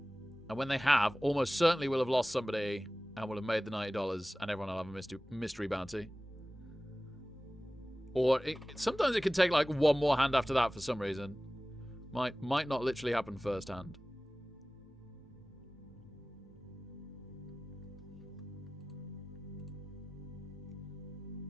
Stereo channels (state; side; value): normal; both; correlation 0.97